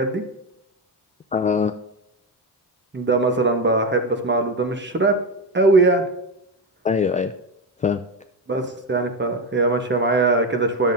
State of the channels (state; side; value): normal; both; correlation 0.13